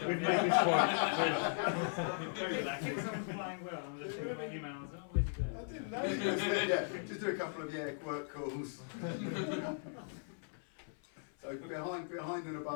this point. If someone's flying well and just think about emails, oh, where's he going? I didn't know. Just do a couple of work calls. So behind and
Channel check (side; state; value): right; silent; 53 dB below the other